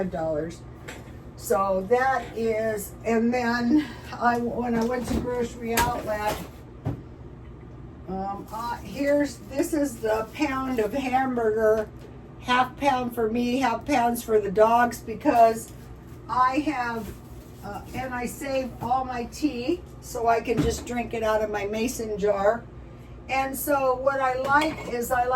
So that is, and then when I went to Grocery Outlet, this is the pound of half pound for me, half pounds for the dogs, because I have, and I save all my tea so I can just drink it out of my mason jar. And so what I like is I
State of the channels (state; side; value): identical; both; correlation 1.00